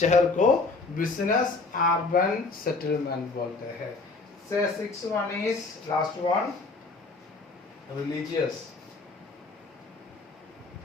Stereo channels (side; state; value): right; quieter; 3.8 dB